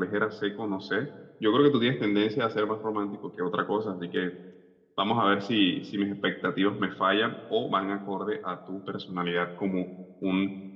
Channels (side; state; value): both; identical; correlation 1.00